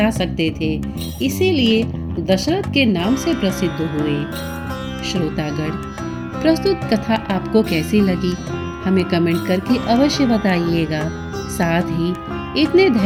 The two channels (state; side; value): identical; both; correlation 1.00